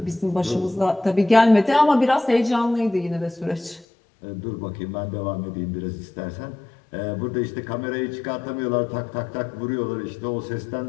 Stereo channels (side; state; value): right; drops out; at 3.9 s